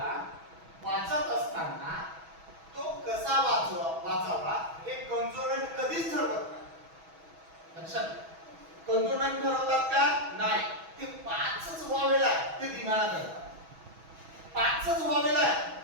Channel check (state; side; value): late; left; 6.2 ms